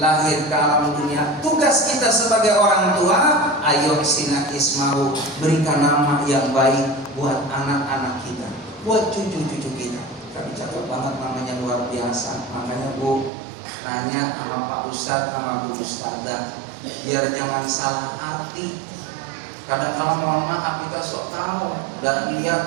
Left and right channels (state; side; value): drops out; left; at 13.3 s